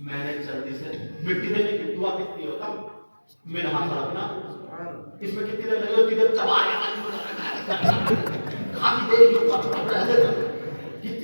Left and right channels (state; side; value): inverted; both; correlation -1.00